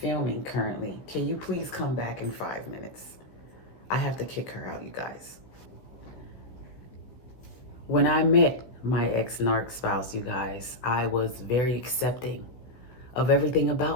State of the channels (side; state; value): right; late; 15 ms